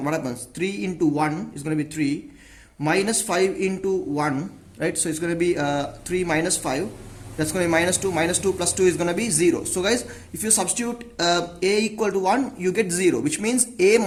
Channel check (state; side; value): identical; both; correlation 1.00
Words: what happens? 3 into 1 is going to be 3, minus 5 into 1, right? So it's going to be 3 minus 5, that's going to be minus 2 plus 2 is going to be 0. So guys, if you substitute a equal to 1, you get 0, which means a